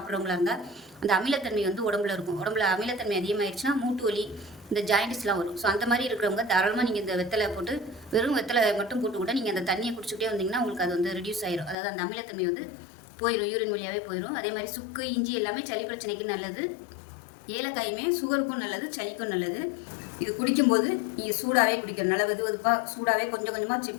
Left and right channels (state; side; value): drops out; right; at 11.8 s